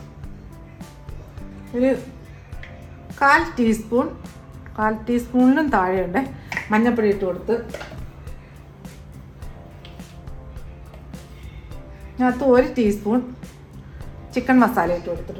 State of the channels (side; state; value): both; identical; correlation 1.00